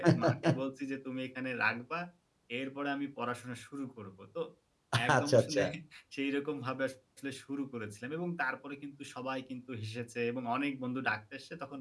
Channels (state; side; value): identical; both; correlation 1.00